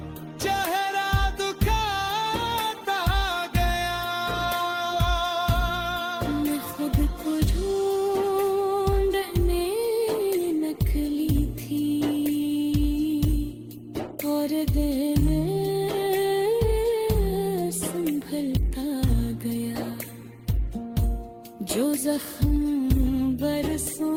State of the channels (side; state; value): both; identical; correlation 1.00